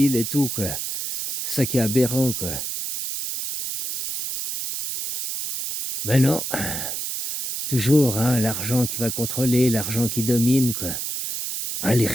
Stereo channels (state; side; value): noise; right; hiss, 2 dB below the sound